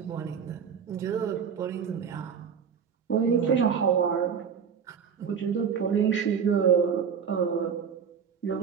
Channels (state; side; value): quieter; left; 7.0 dB